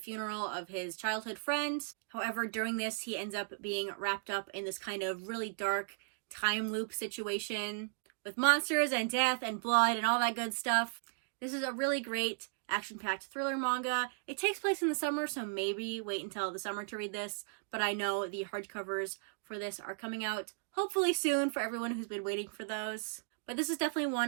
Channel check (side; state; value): left; silent; digital silence